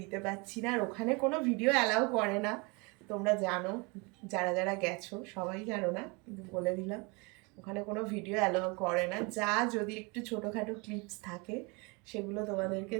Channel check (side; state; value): left; quieter; 29.2 dB